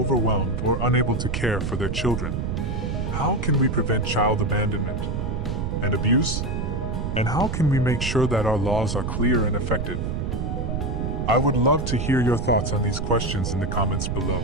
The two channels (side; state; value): right; noise; rumble, 2 dB below the sound